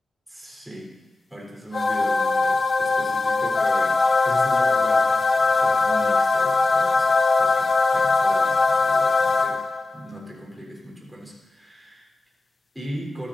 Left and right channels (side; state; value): right; quieter; 3.2 dB